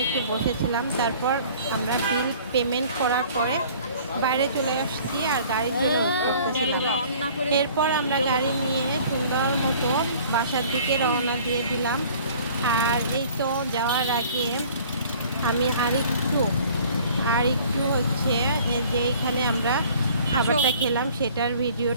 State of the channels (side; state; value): both; inverted; correlation -0.51